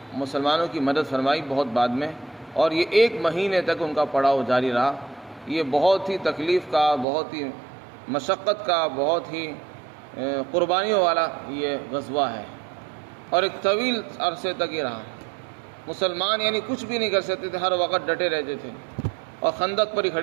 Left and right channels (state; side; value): drops out; left; at 7.1 s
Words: مسلمانوں کی مدد فرمائی بہت بعد میں، اور یہ 1 مہینے تک ان کا پڑاؤ جاری رہا۔ یہ بہت ہی تکلیف کا، بہت ہی مشقت کا، بہت ہی قربانیوں والا یہ غزوہ ہے، اور ایک طویل عرصے تک یہ رہا۔ مسلمان یعنی کچھ بھی نہیں کر سکتے تھے، ہر وقت ڈٹے رہتے تھے اور خندق پر ہی